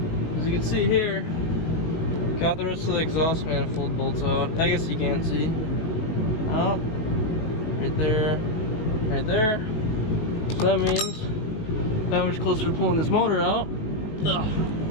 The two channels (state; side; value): late; right; 19 ms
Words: as you can see here, got the rest of the exhaust manifold bolts out. I guess you can't see. Oh, right there, right there. So that means that much closer to pulling this motor out. Ugh.